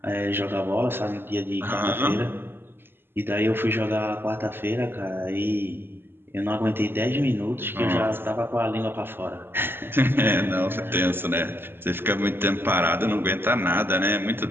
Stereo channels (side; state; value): left; late; 0.10 ms